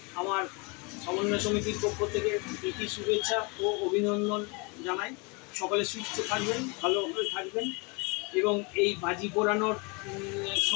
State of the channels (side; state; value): right; quieter; 30.3 dB